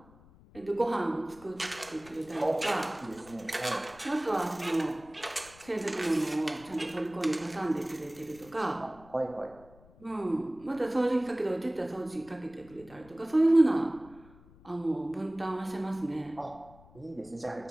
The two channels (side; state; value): left; noise; rumble, 24 dB below the sound